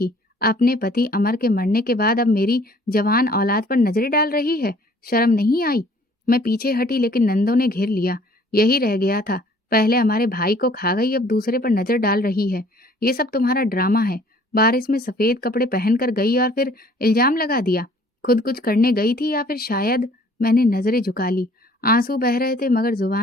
अपने पति अमर के मरने के बाद अब मेरी जवान औलाद पर नजरें डाल रही है। शर्म नहीं आई? मैं पीछे हटी, लेकिन नंदों ने घेर लिया। यही रह गया था, पहले हमारे भाई को खा गई, अब दूसरे पर नजर डाल रही है। ये सब तुम्हारा ड्रामा है। बारिश में सफेद कपड़े पहनकर गई और फिर इल्जाम लगा दिया। खुद कुछ करने गई थी या फिर शायद। मैंने नजरें झुका ली। आंसू बह रहे थे मगर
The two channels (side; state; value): both; normal; correlation 0.56